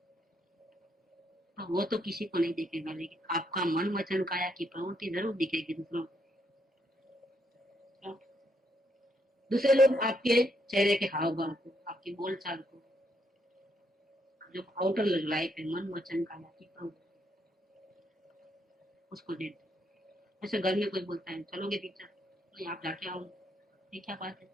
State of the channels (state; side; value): normal; both; correlation 0.75